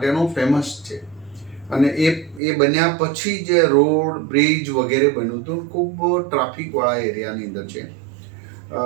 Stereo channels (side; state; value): left; drops out; at 2.4 s